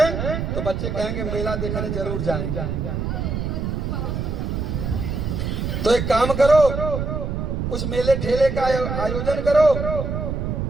तो बच्चे कहेंगे मेला देखने जरूर जाएंगे। तो एक काम करो, कुछ मेले ठेले का आयोजन करो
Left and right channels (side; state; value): right; noise; rumble, 2 dB below the sound